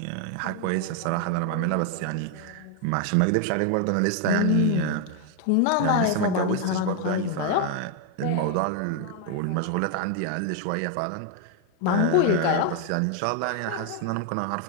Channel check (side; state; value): both; different; correlation 0.01